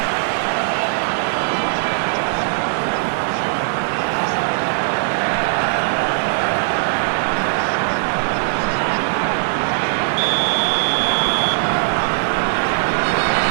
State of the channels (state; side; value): silent; left; digital silence